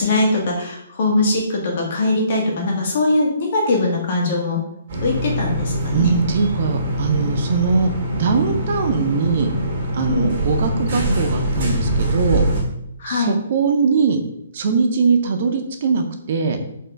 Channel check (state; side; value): inverted; both; correlation -0.63